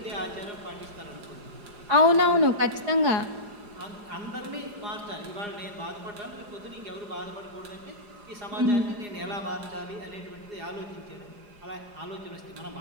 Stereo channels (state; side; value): late; left; 4.9 ms